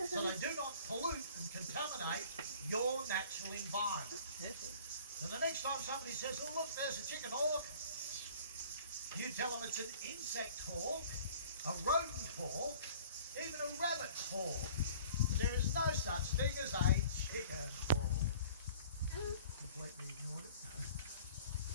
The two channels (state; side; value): inverted; both; correlation -0.49